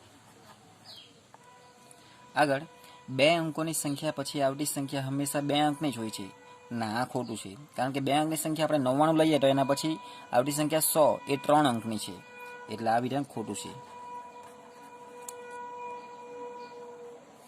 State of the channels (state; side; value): identical; both; correlation 1.00